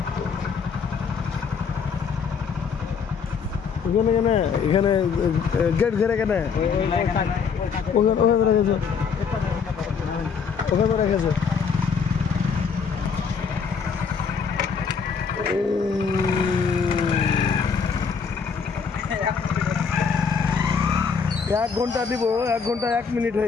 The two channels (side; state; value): right; quieter; 6.0 dB